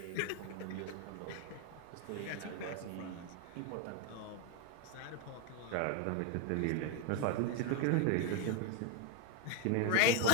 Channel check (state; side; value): different; both; correlation 0.01